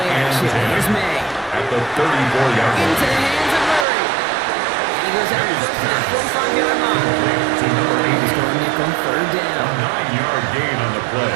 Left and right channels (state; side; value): drops out; left; at 3.9 s